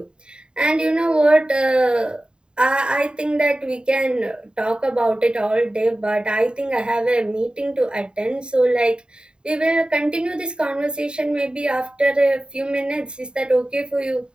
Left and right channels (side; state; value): left; late; 0.050 ms